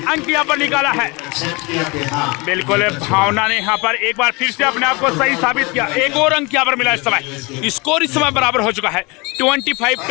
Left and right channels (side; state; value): right; quieter; 26.8 dB